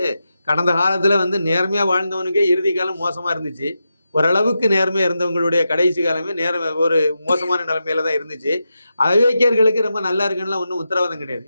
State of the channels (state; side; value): inverted; both; correlation -0.88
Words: கடந்த காலத்துல வந்து நேர்மையா வாழ்ந்தவனுக்கே இறுதி காலம் மோசமா இருந்துச்சு. ஓரளவுக்கு நேர்மையா இருந்தவங்களுடைய கடைசி காலமே ஒரு மோசமான நிலைமையில தான் இருந்துச்சு. அயோக்கியர்களுக்கு ரொம்ப நல்லா இருக்குன்னு ஒன்றும் உத்தரவாதம் கிடையாது.